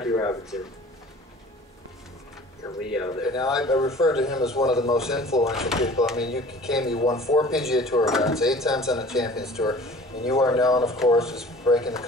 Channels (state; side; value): normal; both; correlation 0.46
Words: Robinson. And Lee Elder. Now, I refer to him as one of the most influential people. I mean, you won 4 PGA Tour events, 8 times on the Champions Tour, and you are known, of course, as breaking the